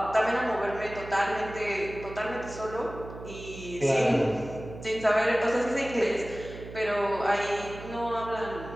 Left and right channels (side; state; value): right; noise; hum, 13 dB below the sound